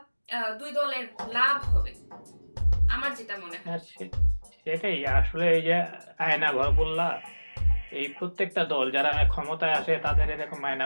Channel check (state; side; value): inverted; both; correlation -1.00